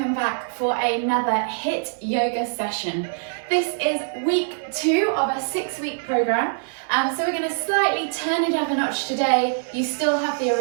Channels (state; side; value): silent; left; 57 dB below the other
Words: back for another HIIT yoga session. This is week 2 of a 6-week program, so we're going to slightly turn it up a notch today. You still have the